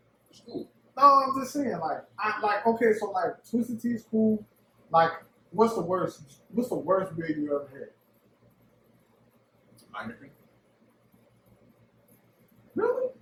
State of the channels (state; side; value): identical; both; correlation 1.00